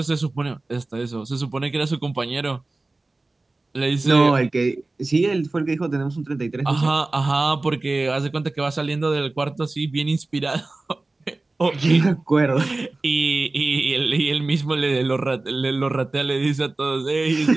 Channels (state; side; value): quieter; left; 3.2 dB